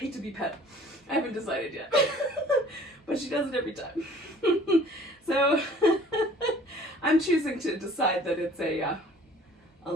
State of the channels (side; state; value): both; normal; correlation 0.52